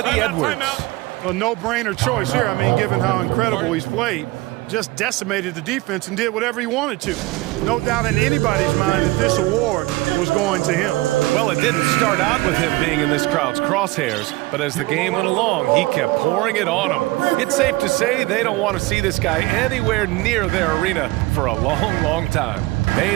Edwards. A no-brainer choice here. I mean, given how incredible he's played, just decimated the defense and did whatever he wanted to. No doubt in anybody's mind that this award was going to him. Well, it didn't start out with him being in this crowd's crosshairs, but as the game went along, he kept pouring it on them. It's safe to say they don't want to see this guy anywhere near their arena for a long, long time.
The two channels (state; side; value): quieter; left; 20.5 dB